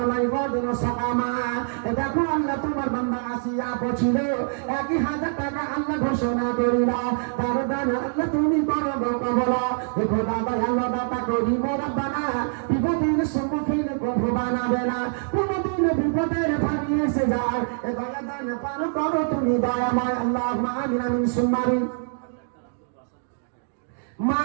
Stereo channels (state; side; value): silent; left; digital silence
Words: লাইবাদিন সাকামা। দেখো আল্লাহ তোমার বান্দা আসিয়া পৌঁছিল, 1000 টাকা আল্লাহ ঘোষণা করিলা, তার দান আল্লাহ তুমি করো কবলা। দেখো দাদা আল্লাহ দাতা করি মোরাব্বানা, বিপদের সম্মুখীন কভু বানাবে না, কোনদিন বিপদের পানি এসে যায়, এ দয়া দান পার করো তুমি দয়াময়। আল্লাহুম্মা আমিন আমিন সুম্মা আমিন।